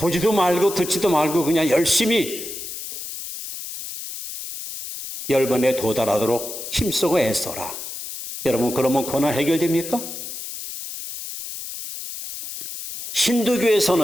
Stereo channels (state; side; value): noise; left; hiss, 9 dB below the sound